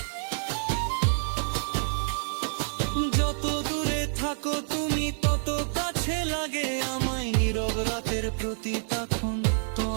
যত দূরে থাকো তুমি তত কাছে লাগে আমায়, নীরব রাতের প্রতি তখন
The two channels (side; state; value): left; silent; 58 dB below the other